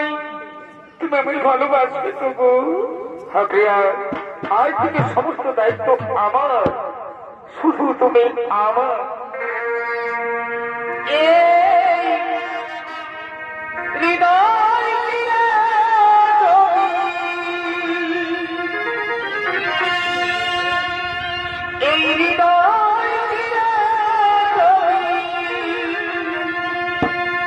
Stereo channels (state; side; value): identical; both; correlation 1.00